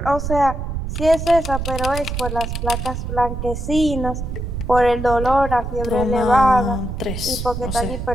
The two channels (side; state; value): right; noise; rumble, 5 dB below the sound